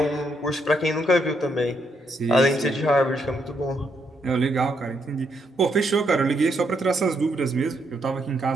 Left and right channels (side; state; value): both; normal; correlation 0.76